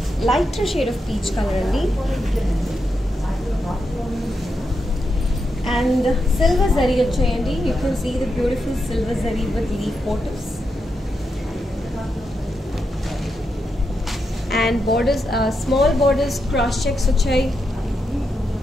lighter shade of peach color only. And silver zari vachayandi. You can see the beautiful silver zari with leaf motifs. And borders, small borders, cross checks vachay.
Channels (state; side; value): normal; both; correlation 0.85